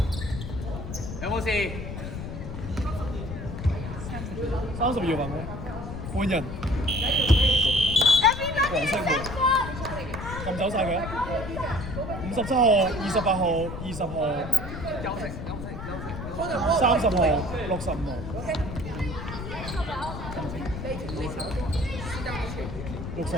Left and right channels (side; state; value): left; noise; rumble, 7 dB below the sound